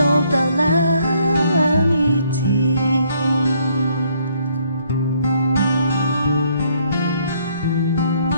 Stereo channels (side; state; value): both; inverted; correlation -0.67